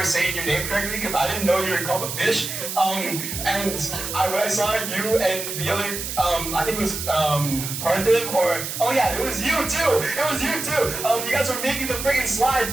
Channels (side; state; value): right; noise; hiss, 5 dB below the sound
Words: saying your name correctly because I didn't know you were called a fish. And when I saw you and the other, I think it was Parthiv or, oh yeah, it was you too. It was you too. You guys were making the freaking slides